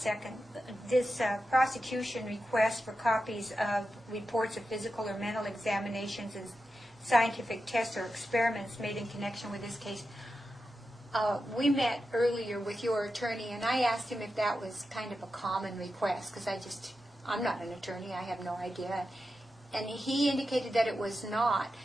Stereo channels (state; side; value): normal; both; correlation 0.90